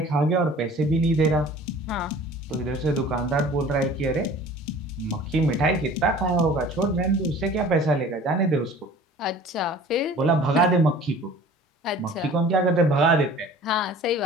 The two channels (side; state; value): both; normal; correlation 0.46